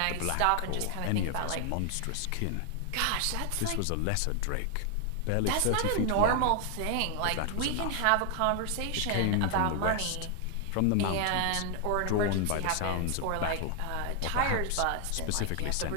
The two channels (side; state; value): both; different; correlation 0.00